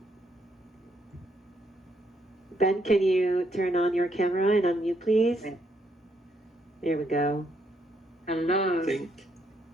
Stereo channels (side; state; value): both; normal; correlation 0.74